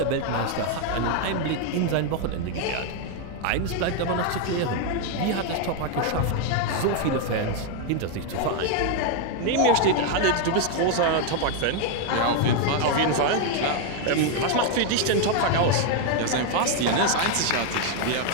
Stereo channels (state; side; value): different; both; correlation 0.01